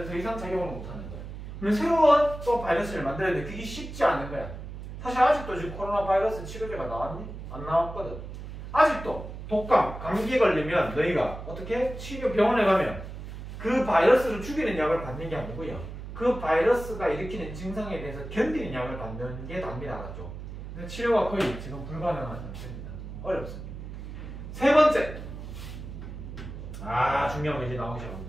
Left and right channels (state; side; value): noise; right; hum, 10 dB below the sound